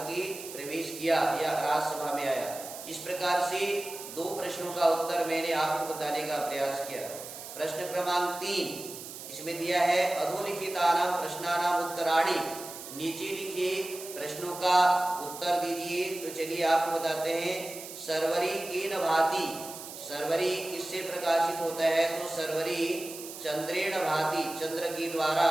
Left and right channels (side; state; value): right; noise; hiss, 12 dB below the sound